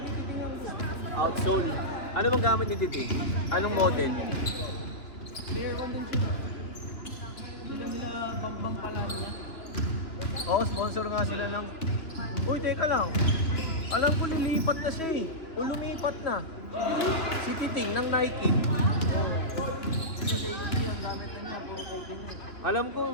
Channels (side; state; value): right; late; 3.2 ms